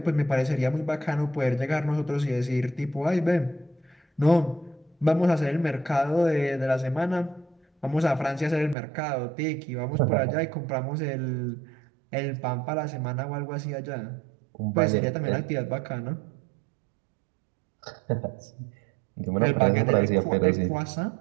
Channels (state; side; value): drops out; left; at 8.8 s